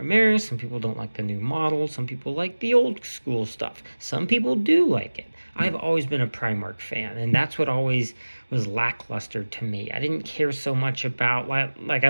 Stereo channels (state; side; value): inverted; both; correlation -1.00